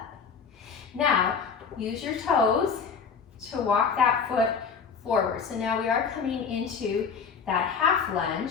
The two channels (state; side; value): quieter; right; 6.0 dB